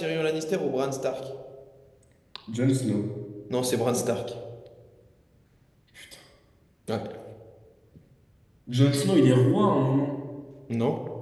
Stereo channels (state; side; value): identical; both; correlation 1.00